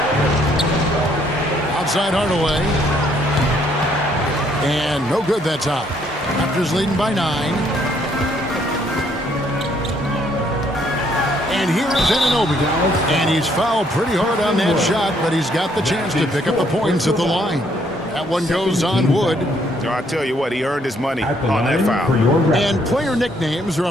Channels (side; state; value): both; normal; correlation 0.68